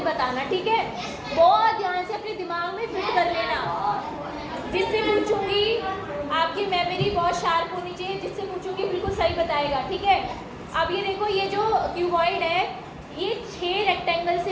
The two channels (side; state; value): both; identical; correlation 1.00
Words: बताना, ठीक है? बहुत ध्यान से अपने दिमाग में फिट कर लेना। जिससे पूछूंगी आपकी मेमोरी बहुत शार्प होनी चाहिए, जिससे पूछूंगी बिल्कुल सही बताएगा, ठीक है? अब ये देखो, ये जो क्यूबॉइड है ये 6 रेक्टेंगल